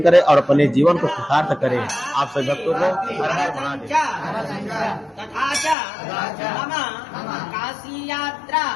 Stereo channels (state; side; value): drops out; right; at 5.8 s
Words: करें और अपने जीवन को कृतार्थ करें। आप सभी भक्तों को हर हर महादेव। तथा च मम काशी यात्रा